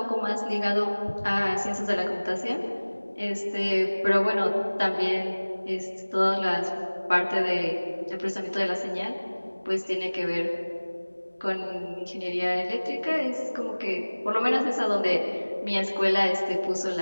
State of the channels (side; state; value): both; inverted; correlation -1.00